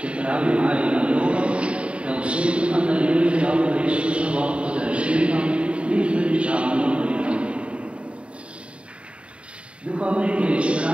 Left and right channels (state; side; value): late; left; 0.059 ms